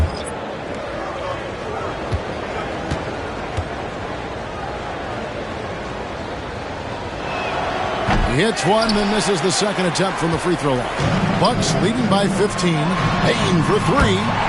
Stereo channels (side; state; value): both; identical; correlation 1.00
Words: He hits one, then misses the second attempt from the free throw line. Bucks leading by 15. Payton for 3,